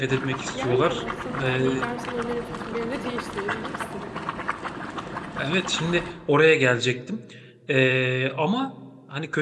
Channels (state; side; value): identical; both; correlation 1.00